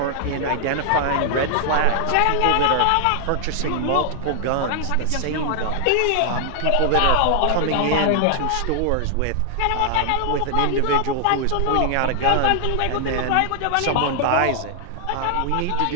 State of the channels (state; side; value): different; both; correlation 0.00